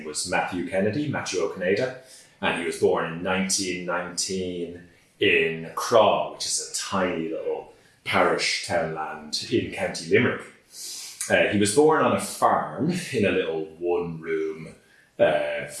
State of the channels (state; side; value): identical; both; correlation 1.00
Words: was Matthew O'Conada, and he was born in 1919 in Craw, which is a tiny little parish townland in County Limerick. He was born on a farm in a little one-room